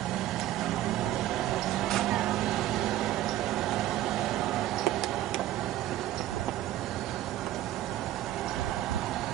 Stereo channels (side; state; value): left; quieter; 13.8 dB